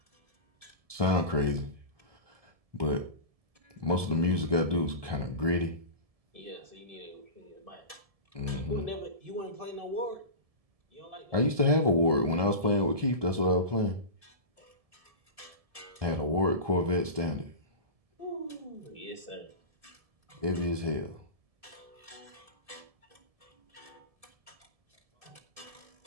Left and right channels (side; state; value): left; late; 1.7 ms